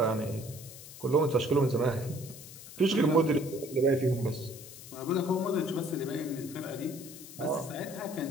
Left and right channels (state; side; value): noise; left; hiss, 15 dB below the sound